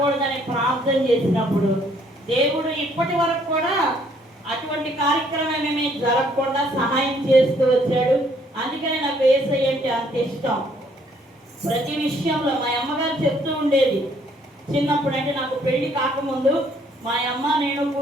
ప్రార్థన చేసినప్పుడు దేవుడు ఇప్పటి వరకు కూడా అటువంటి కార్యక్రమం ఏమీ జరగకుండా సహాయం చేస్తూ వచ్చాడు. అందుకనే నాకు యేసయ్య అంటే అంత ఇష్టం. ప్రతి విషయంలో మా అమ్మగారు చెప్తూ ఉండేది చిన్నప్పుడు, అంటే నాకు పెళ్లి కాకముందు మా అమ్మ నేను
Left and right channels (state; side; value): normal; both; correlation 0.65